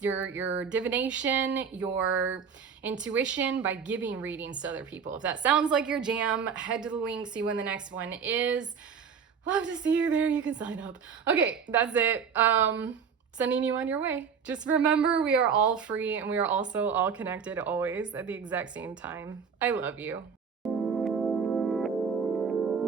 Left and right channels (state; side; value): quieter; left; 6.5 dB